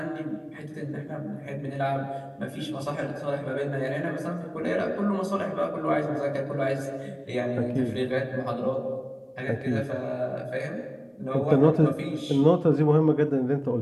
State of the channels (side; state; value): both; identical; correlation 1.00